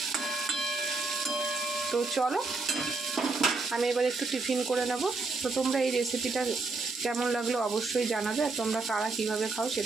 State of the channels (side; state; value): left; quieter; 3.8 dB